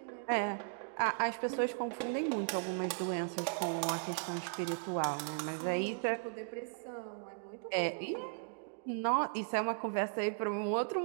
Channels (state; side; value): silent; left; digital silence